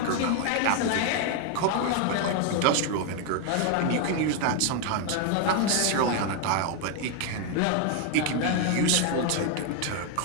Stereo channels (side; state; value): both; different; correlation 0.01